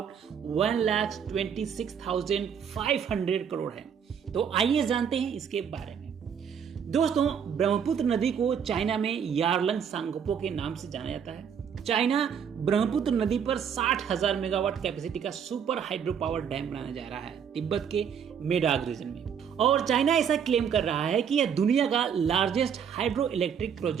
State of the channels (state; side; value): quieter; left; 7.7 dB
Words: 1,26,500 करोड़ है। तो आइए जानते हैं इसके बारे में। दोस्तों, ब्रह्मपुत्र नदी को चाइना में यारलंग सांगपो के नाम से जाना जाता है। चाइना ब्रह्मपुत्र नदी पर 60,000 मेगावाट कैपेसिटी का सुपर हाइड्रो पावर डैम बनाने जा रहा है तिब्बत के मेडाग रीजन में। और चाइना ऐसा क्लेम कर रहा है कि यह दुनिया का लार्जेस्ट हाइड्रो इलेक्ट्रिक